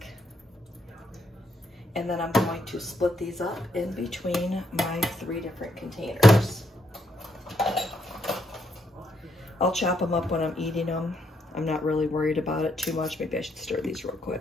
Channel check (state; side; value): normal; both; correlation 0.76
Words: And then I'm going to split these up in between my 3 different containers. I'll chop them up when I'm eating them. I'm not really worried about it too much. Maybe I should stir these real